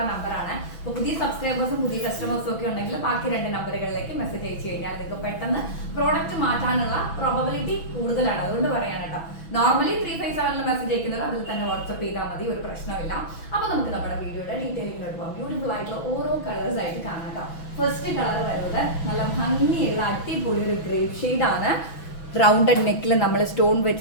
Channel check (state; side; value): late; right; 6.1 ms